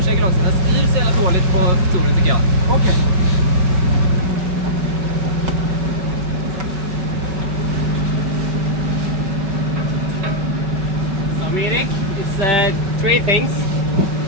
också. Den styr så jävla dåligt på stolen tycker jag. Okej. three things.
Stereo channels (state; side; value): late; left; 5.1 ms